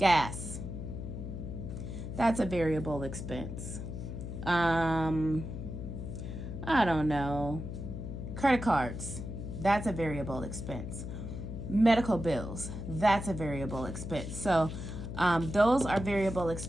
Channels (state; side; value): noise; left; hum, 7 dB below the sound